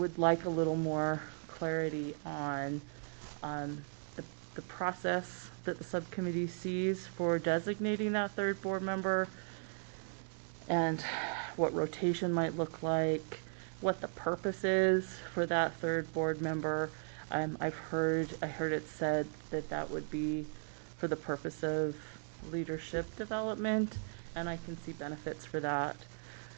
like a little more clarity on the process that the subcommittee sees for designating that third board member, and what rotation might look like, what the purpose is for that third board member. I heard it said that that would be for the purpose of leadership development, and I can see benefits for that.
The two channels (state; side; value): silent; left; 53 dB below the other